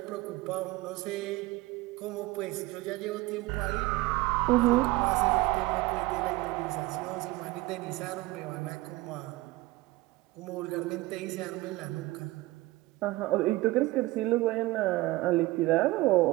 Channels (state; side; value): quieter; left; 19.4 dB